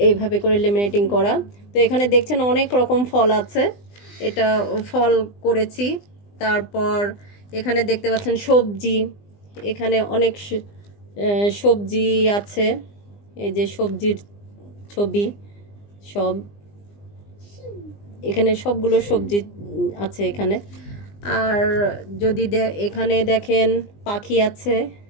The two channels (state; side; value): late; right; 20 ms